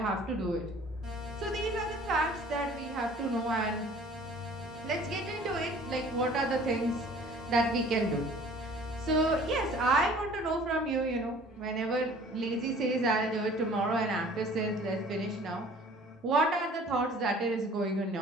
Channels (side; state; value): both; normal; correlation 0.50